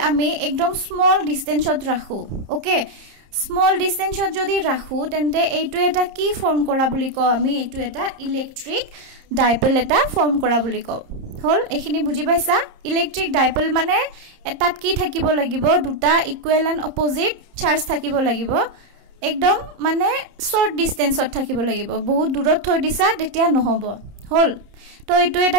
ami ekdom small distance ot rakhu okay small distance ot jodi rakhu tente eitu eta ki form kora boli ko ami eitu eta electric dipole eta form kora boli ko hol ekhini buji paisa electric dipole mane etat ki thakibo lagibo duta equal and opposite charge thakibo lagibo একদম মানে short ডিসটেন্সত থাকিব লাগিব বহুত দূৰত থৈ দিছা তেতিয়া নহব হল তো এটো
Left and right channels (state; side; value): late; left; 30 ms